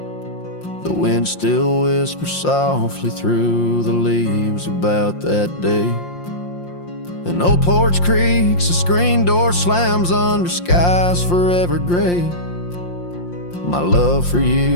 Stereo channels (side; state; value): right; late; 5.7 ms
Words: the wind still whispers softly through the leaves about that day. An old porch creaks, a screen door slams under skies forever gray. My love for